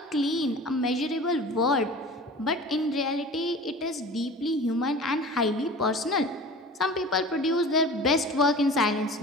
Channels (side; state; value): both; normal; correlation 0.39